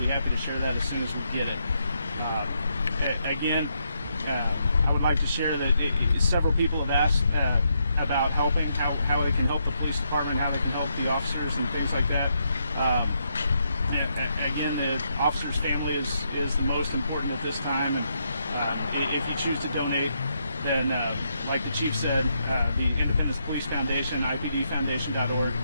happy to share that as soon as we get it. Again, I would like to share that several people have asked about helping, how they can help the police department, how they can help the officers and things like that. Again, the officer's family is the most important at this time, and if you choose to donate, then like the chief said, the Independence Police Foundation, IPDfoundation.org,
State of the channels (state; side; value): inverted; both; correlation -0.78